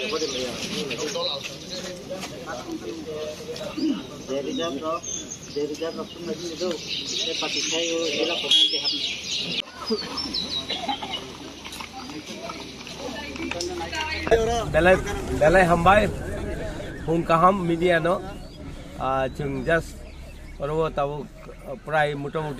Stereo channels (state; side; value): identical; both; correlation 1.00